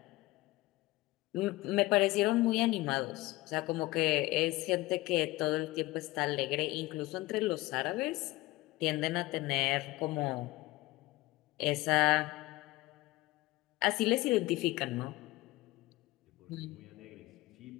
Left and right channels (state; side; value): quieter; right; 19.5 dB